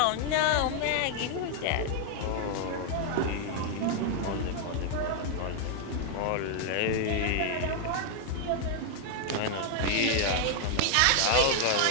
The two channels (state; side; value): different; both; correlation 0.00